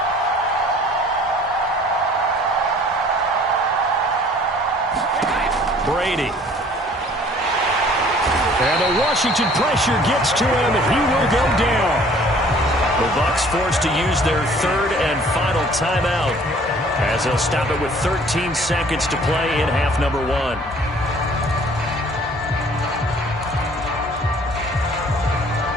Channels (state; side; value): normal; both; correlation 0.54